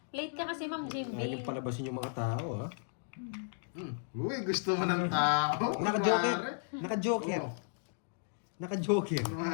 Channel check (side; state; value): right; silent; digital silence